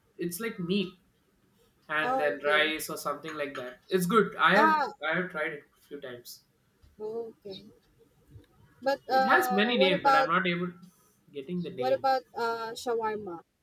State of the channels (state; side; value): identical; both; correlation 1.00